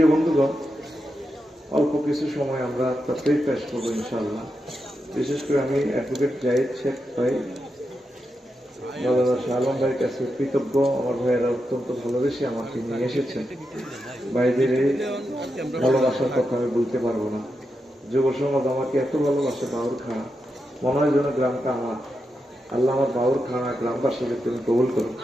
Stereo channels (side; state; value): both; normal; correlation 0.87